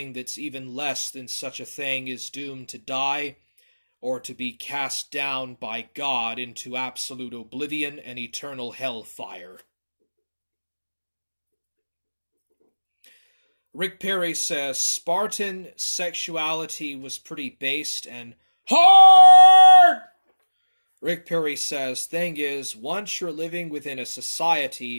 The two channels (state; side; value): inverted; both; correlation -1.00